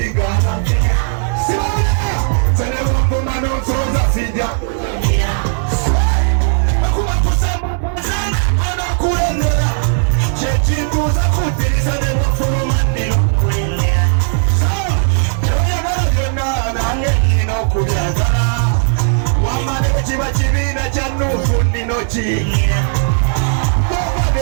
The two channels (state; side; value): silent; left; digital silence